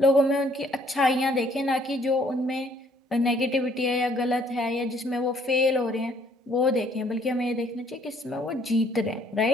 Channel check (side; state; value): both; normal; correlation 0.63